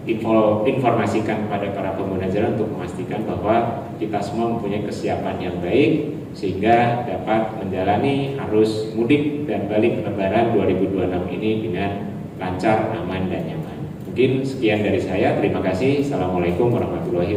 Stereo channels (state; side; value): identical; both; correlation 1.00